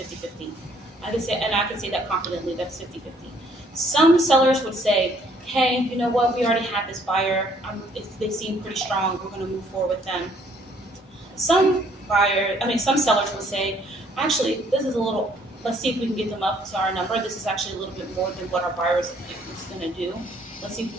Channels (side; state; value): both; normal; correlation 0.63